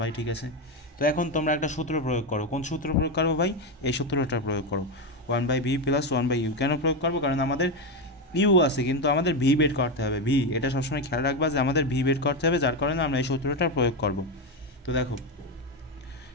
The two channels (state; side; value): normal; both; correlation 0.11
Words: ঠিক আছে। তো এখন তোমরা একটা সূত্র প্রয়োগ করো। কোন সূত্র প্রয়োগ করবো ভাই? এই সূত্রটা প্রয়োগ করো, 1/v + 1/u। কেন প্রয়োগ করবো? কারণ আমাদের ইউ আছে কিন্তু আমাদের ভি বের করতে হবে। ভি, এটা সবসময় খেয়াল রাখবা যে আমাদের ভি বের করতে হবে, যার কারণে আমরা এই সূত্রটা প্রয়োগ করব। তো দেখো